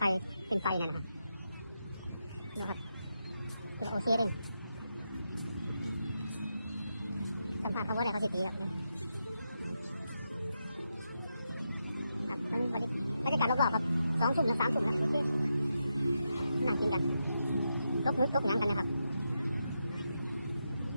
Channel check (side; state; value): both; inverted; correlation -0.85